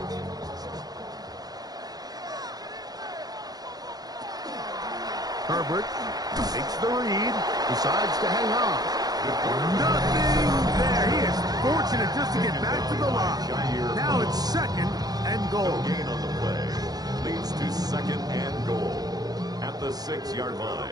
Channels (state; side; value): late; left; 0.19 ms